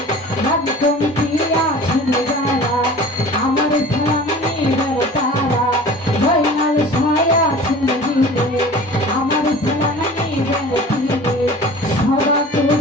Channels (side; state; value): both; normal; correlation 0.41